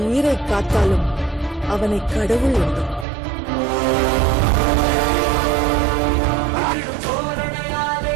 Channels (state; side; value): drops out; left; at 3.1 s